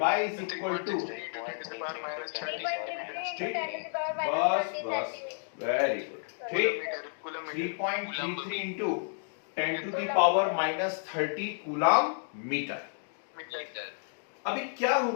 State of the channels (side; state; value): right; silent; digital silence